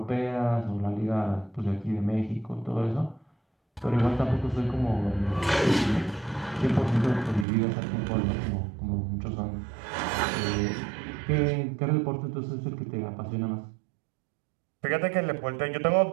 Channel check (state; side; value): drops out; left; at 7.5 s